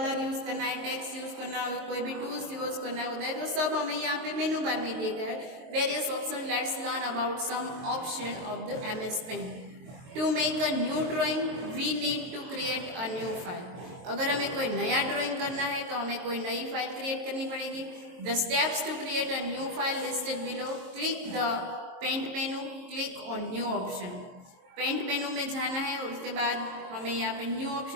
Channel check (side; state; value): left; late; 23 ms